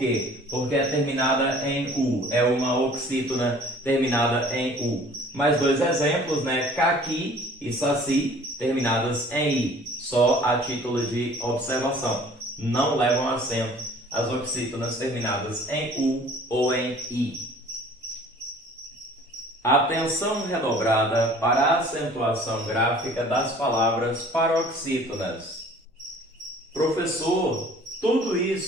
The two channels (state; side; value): normal; both; correlation 0.50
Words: Porque é terminada em U. É uma oxítona terminada em U. Mais dois exemplos, né? Caqui e saci, terminadas em I. Só a título de observação. Não levam acento as oxítonas terminadas em U ou em I. Atenção redobrada para a acentuação gráfica das palavras paroxítonas. Professor, tudo